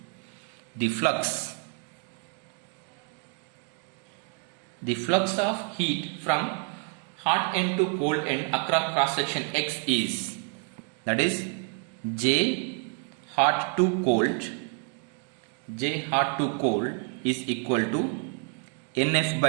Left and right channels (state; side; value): quieter; left; 30.6 dB